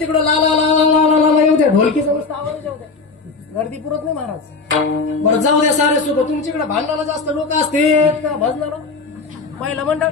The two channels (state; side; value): quieter; right; 4.2 dB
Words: ला ला ला ला ला ला येऊ द्या, ढोलकीचा नुसतं आवाज येऊ द्या, गर्दी पुरत नाही महाराज. बरं जाऊ द्या सारे सुख. तुमच्याकडे भांडणाला जास्त लोक असते का भजणार पहिलं मंडळ